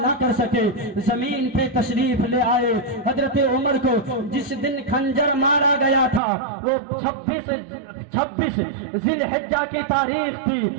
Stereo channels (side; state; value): left; drops out; at 6.2 s